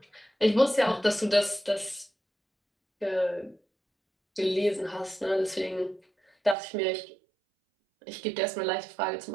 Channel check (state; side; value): drops out; left; at 6.6 s